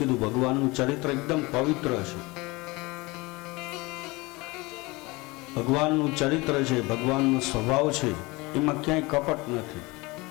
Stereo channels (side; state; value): right; quieter; 23.6 dB